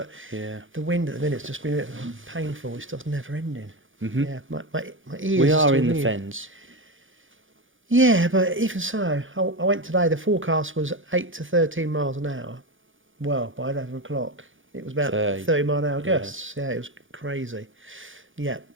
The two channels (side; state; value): left; late; 0.57 ms